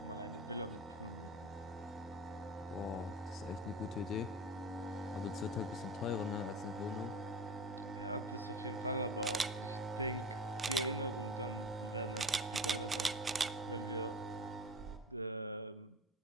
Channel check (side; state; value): both; normal; correlation 0.31